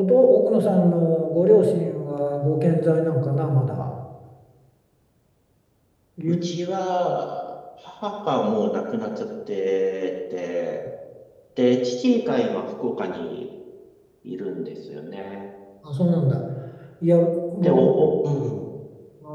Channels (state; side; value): identical; both; correlation 1.00